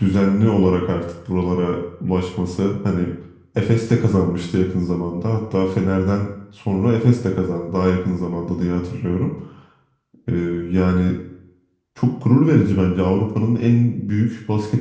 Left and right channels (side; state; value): both; identical; correlation 1.00